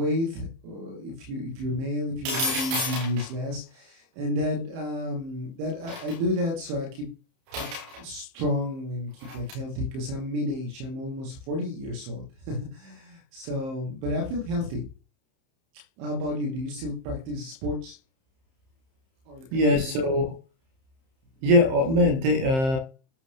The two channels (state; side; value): late; left; 30 ms